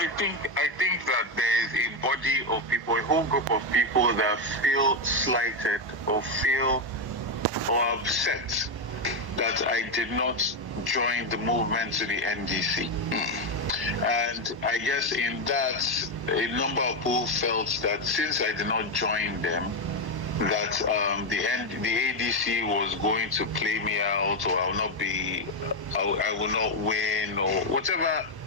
think that there is a body of people, a whole group of people that feel slighted or feel or upset that I did not join the movement to the NDC. And I guess in that, a number of people felt that since I did not join them, that the ADC was going to play me out, or I will not win, or whatever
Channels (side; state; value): left; late; 1.1 ms